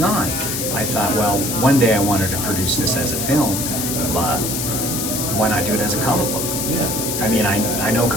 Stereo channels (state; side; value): noise; left; hiss, 2 dB below the sound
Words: on, I thought, well, one day I wanted to produce this as a film, but why not do it as a comic book? Yeah. I mean, I know